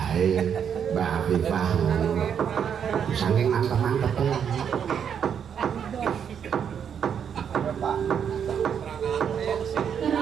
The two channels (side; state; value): left; quieter; 7.9 dB